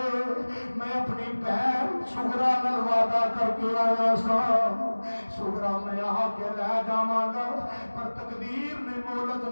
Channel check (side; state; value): both; inverted; correlation -1.00